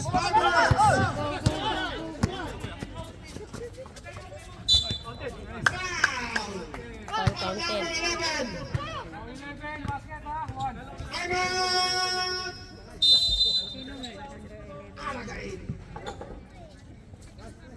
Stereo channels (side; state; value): both; identical; correlation 1.00